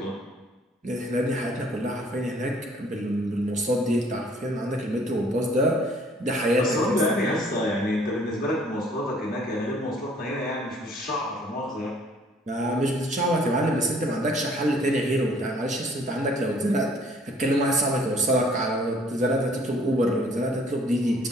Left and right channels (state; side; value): normal; both; correlation 0.58